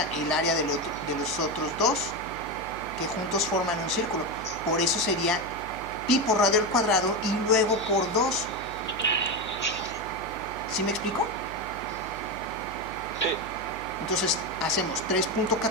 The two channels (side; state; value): right; noise; hum, 15 dB below the sound